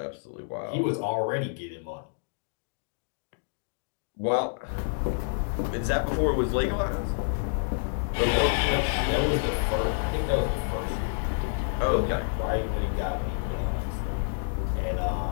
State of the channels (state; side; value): silent; right; digital silence